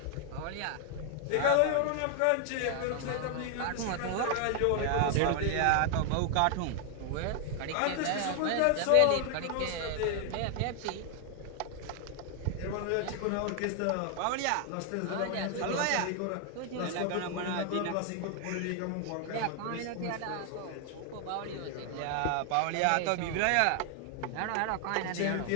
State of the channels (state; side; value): different; both; correlation 0.00